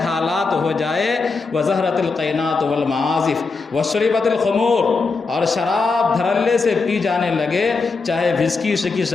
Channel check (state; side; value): quieter; right; 4.3 dB